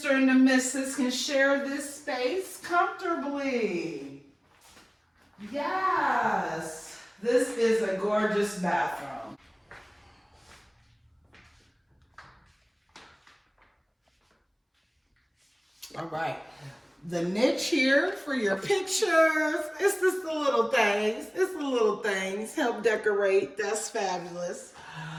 and the Mrs. can share this space comfortably. Yes, this is a gorgeous bathroom. All right. The niche here for your pictures. It's just the little things. It's the little things. Help decorate. That's fabulous.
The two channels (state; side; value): identical; both; correlation 1.00